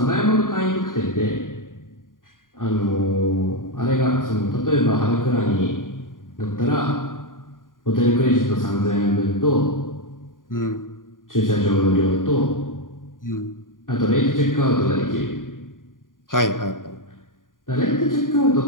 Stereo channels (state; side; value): late; right; 0.89 ms